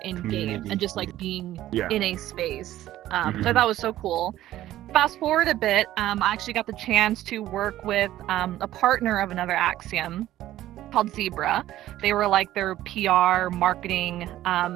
in game and just like being in a space. So that was so cool. Fast forward a bit, I actually got the chance to work with a partner of another Axiom called Zebra. They were like their PR marketing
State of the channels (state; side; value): quieter; left; 14.0 dB